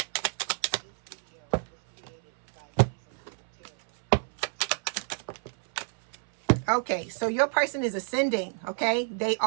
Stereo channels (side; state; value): left; silent; 59 dB below the other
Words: Okay, so your person is ascending, okay? They